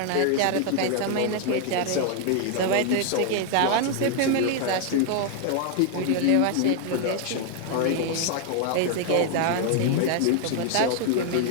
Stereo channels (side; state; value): both; different; correlation 0.00